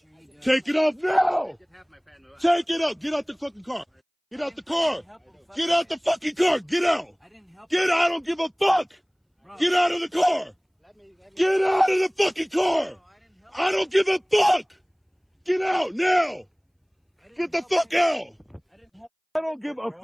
Take it off now. Take it off. Get out the fucking car. Get out the car. Get out the fucking car. Get out. Get out. I don't give a fuck. Get out of the car. Get out of the fucking car. I don't give a fuck. Get out now. Get the fuck out. I don't give a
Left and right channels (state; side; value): identical; both; correlation 1.00